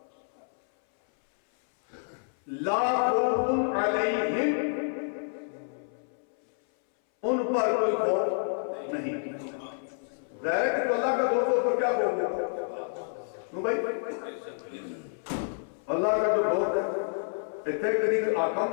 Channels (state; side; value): silent; right; 59 dB below the other